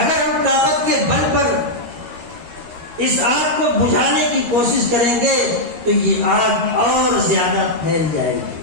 ہم طاقت کے بل پر اس آگ کو بجھانے کی کوشش کریں گے تو یہ آگ اور زیادہ پھیل جائے گی۔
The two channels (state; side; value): late; left; 13 ms